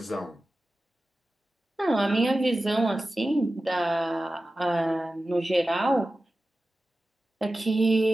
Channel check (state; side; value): normal; both; correlation 0.95